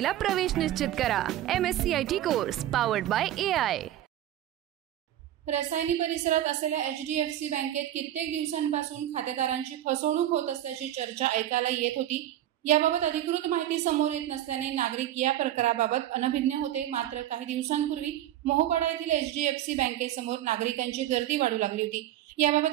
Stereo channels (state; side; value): quieter; left; 12.6 dB